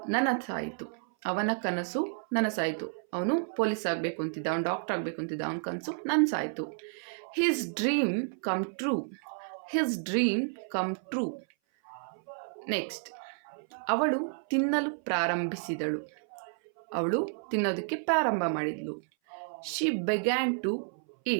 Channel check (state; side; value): silent; left; 57 dB below the other